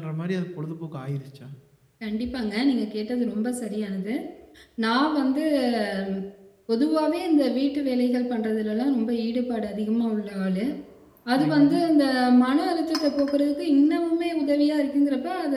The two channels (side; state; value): both; identical; correlation 1.00